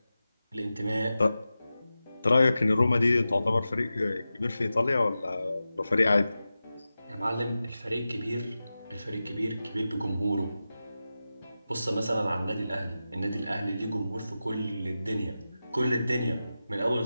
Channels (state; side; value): inverted; both; correlation -0.93